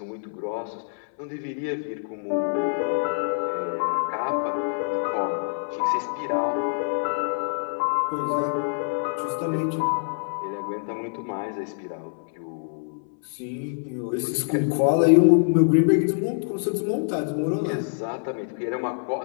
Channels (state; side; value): silent; right; 61 dB below the other